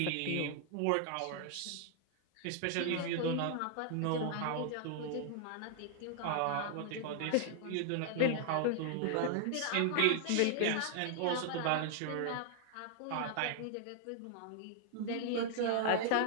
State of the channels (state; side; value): different; both; correlation 0.00